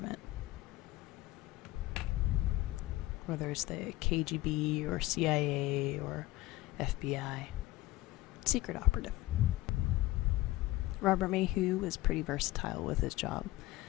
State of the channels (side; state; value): right; quieter; 17.7 dB